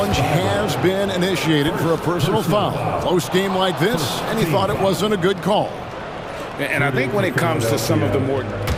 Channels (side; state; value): both; identical; correlation 1.00